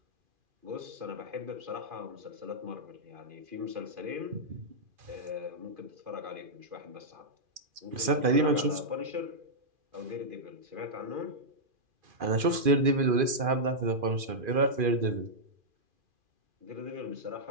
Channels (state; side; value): late; left; 2.4 ms